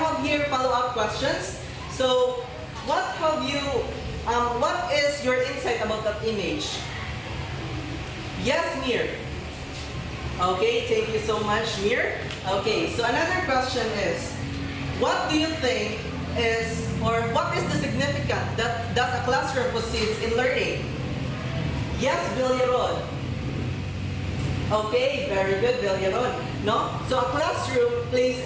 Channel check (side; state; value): both; identical; correlation 1.00